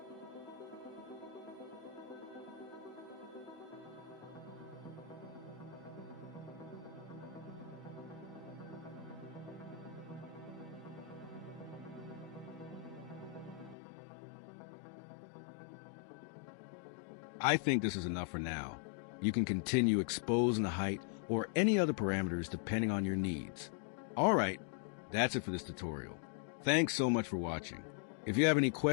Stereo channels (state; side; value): drops out; right; at 13.8 s